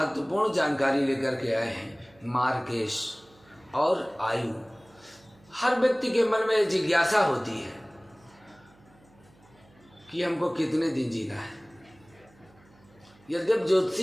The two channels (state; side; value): noise; right; hum, 29 dB below the sound